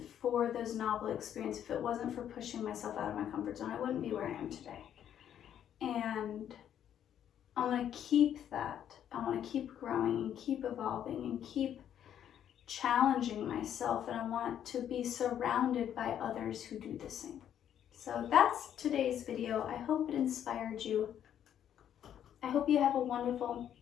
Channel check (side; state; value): right; quieter; 9.9 dB